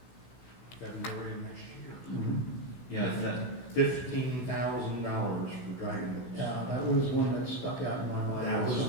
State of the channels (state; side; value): late; right; 16 ms